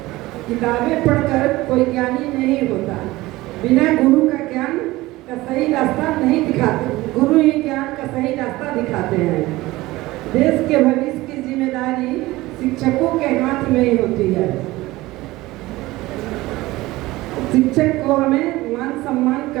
किताबें पढ़कर कोई ज्ञानी नहीं होता। बिना गुरु का ज्ञान का सही रास्ता नहीं दिखाते, गुरु ही ज्ञान का सही रास्ता दिखाते हैं। देश के भविष्य की जिम्मेदारी शिक्षकों के हाथ में ही होती है। शिक्षक को हमें मान सम्मान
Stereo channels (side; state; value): left; quieter; 18.9 dB